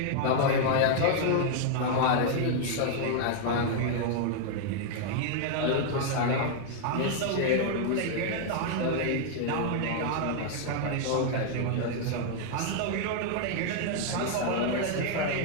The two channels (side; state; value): both; different; correlation 0.00